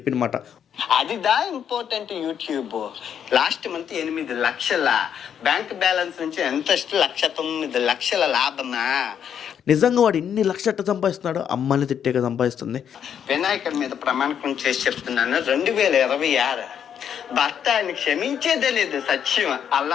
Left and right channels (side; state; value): right; quieter; 8.6 dB